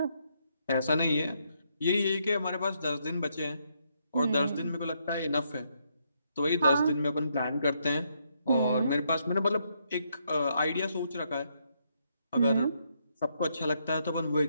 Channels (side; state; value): both; inverted; correlation -0.76